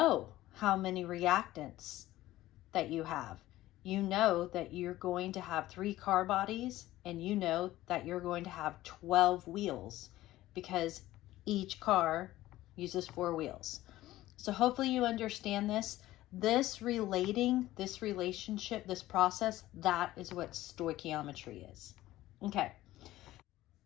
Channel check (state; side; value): quieter; right; 15.8 dB